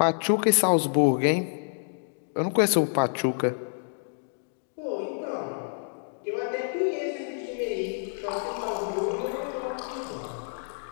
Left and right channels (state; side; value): silent; right; digital silence